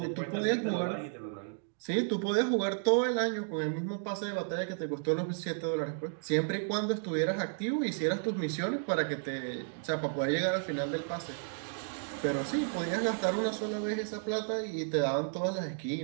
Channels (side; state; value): left; silent; digital silence